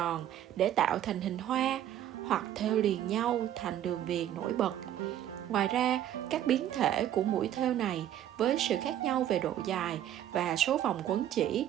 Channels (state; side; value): quieter; left; 11.5 dB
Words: để tạo thành hình hoa, hoặc thêu liền nhau thành đường viền nổi bật. Ngoài ra, các biến thể của mũi thêu này với sự khác nhau về độ dài và số vòng quấn chỉ